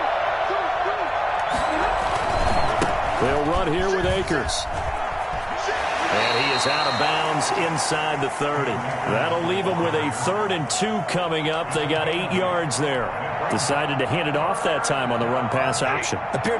They'll run here with Akers. And he is out of bounds inside the 30. That'll leave him with a 3rd and 2 coming up. They got 8 yards there. Decided to hand it off that time on the run-pass option.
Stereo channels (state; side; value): identical; both; correlation 1.00